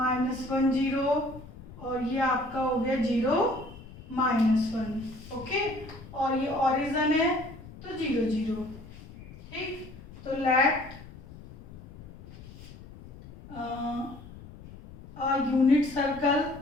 0 और ये आपका हो गया 0 -1। ओके, और ये ओरिजिन है तो 0 0, ठीक। तो लेट a unit circle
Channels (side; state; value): left; noise; rumble, 17 dB below the sound